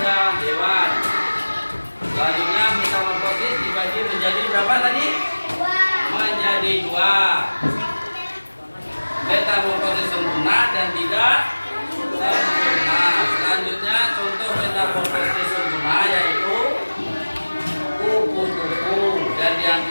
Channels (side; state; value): both; inverted; correlation -1.00